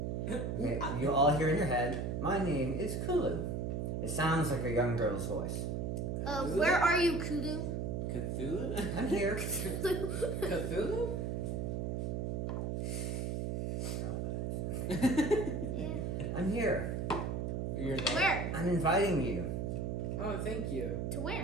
Okay, you all hear in your head, "My name is Kulu." It sounds like a young girl's voice. Where are you, Kudu? Cthulhu? I'm here. Cthulhu? Yeah. I'm here. You're there? Where? I'm inviting you. Oh, thank you. To where?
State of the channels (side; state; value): right; noise; hum, 1 dB below the sound